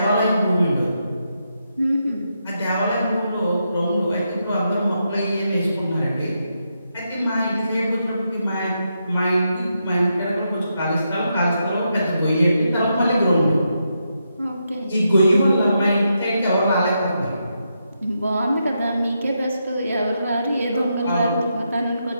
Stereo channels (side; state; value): both; inverted; correlation -0.83